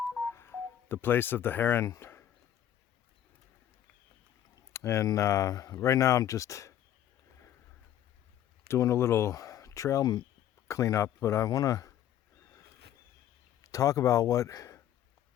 the place of the heron. And right now I'm just doing a little trail cleanup, but I want to talk about what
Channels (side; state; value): right; quieter; 11.3 dB